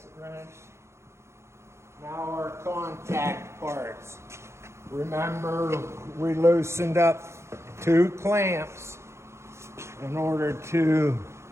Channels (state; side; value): late; left; 0.13 ms